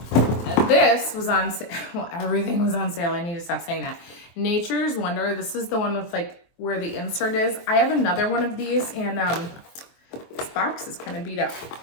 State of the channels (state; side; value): late; right; 23 ms